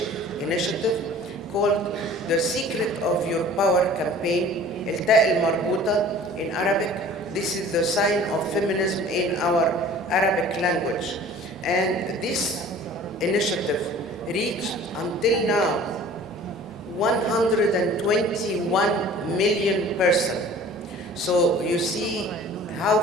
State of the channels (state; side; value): normal; both; correlation 0.46